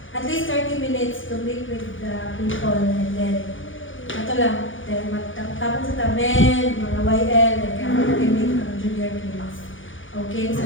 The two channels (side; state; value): right; late; 0.57 ms